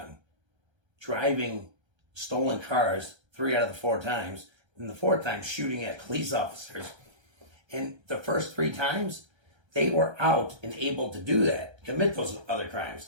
driving stolen cars 3 out of the 4 times, and the 4th time shooting at police officers. And the first 3 times, they were out and able to do that, commit those other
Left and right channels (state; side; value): late; left; 1.3 ms